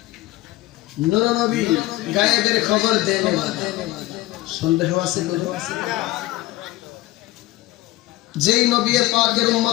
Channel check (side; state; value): right; quieter; 18.0 dB